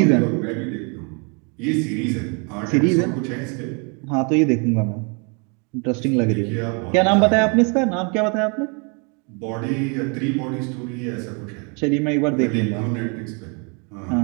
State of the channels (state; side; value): quieter; left; 34.7 dB